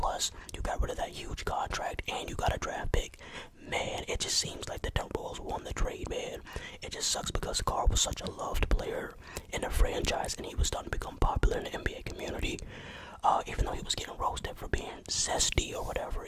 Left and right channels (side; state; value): both; identical; correlation 1.00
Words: you got rid of that huge contract and you got a draft pick. Man, it just seems like the Timberwolves won the trade, man. It just sucks because Karl was such a loved player in the franchise and he was starting to become popular in the NBA community. Even though he was getting roasted for being zesty or whatever,